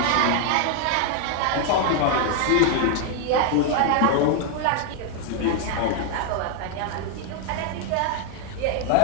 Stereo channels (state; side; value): different; both; correlation 0.00